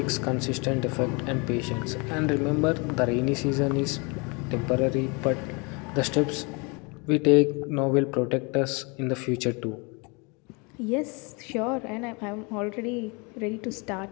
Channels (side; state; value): right; quieter; 30.4 dB